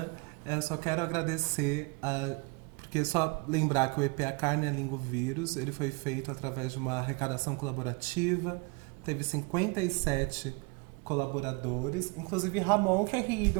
Só quero agradecer, porque só lembrar que o EP A Carne, a Língua, o Vírus, ele foi feito através de uma arrecadação colaborativa. Teve 57 colaboradores, inclusive Ramon querido,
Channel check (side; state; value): left; quieter; 30.0 dB